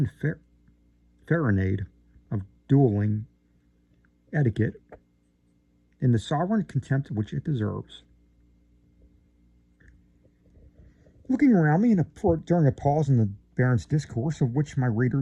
of dueling etiquette in the sovereign contempt which it deserves. Looking around me during a pause in the Baron's discourse, of which my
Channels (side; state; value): both; identical; correlation 1.00